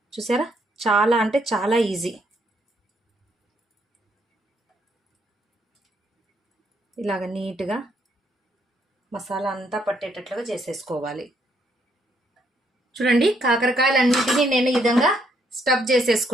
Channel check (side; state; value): both; normal; correlation 0.72